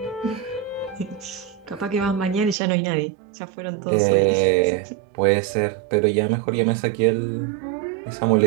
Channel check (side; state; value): left; drops out; at 2.6 s